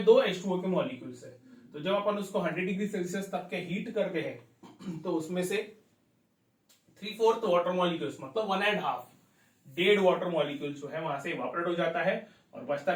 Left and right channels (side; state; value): both; identical; correlation 1.00